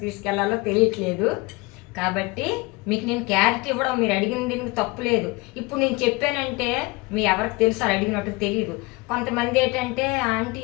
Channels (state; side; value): quieter; right; 24.5 dB